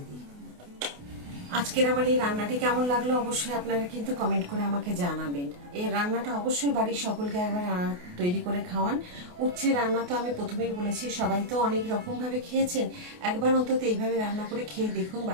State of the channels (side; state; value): left; late; 28 ms